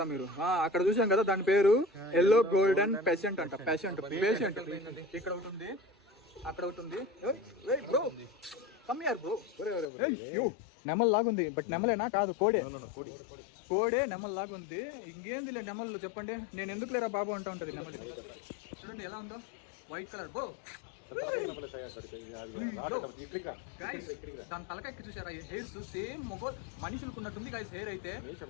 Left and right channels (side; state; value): right; drops out; at 9.9 s